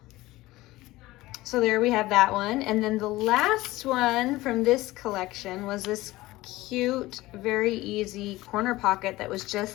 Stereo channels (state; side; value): quieter; right; 18.4 dB